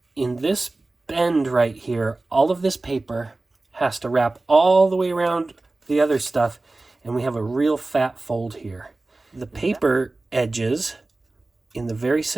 in this bend right here, all of this paper has to wrap all the way around the other stuff, and we have a real fat fold here. The paper edges in the very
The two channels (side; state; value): left; quieter; 3.1 dB